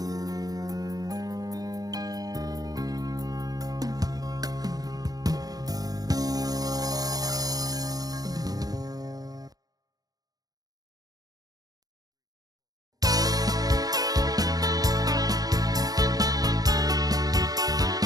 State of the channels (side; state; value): left; late; 0.18 ms